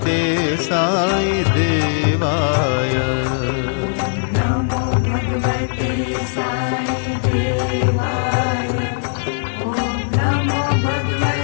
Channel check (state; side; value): silent; right; 64 dB below the other